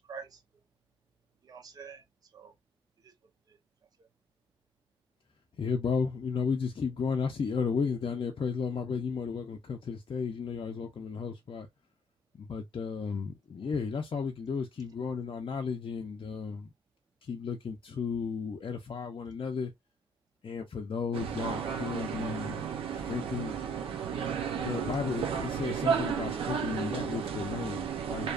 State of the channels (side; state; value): both; normal; correlation 0.62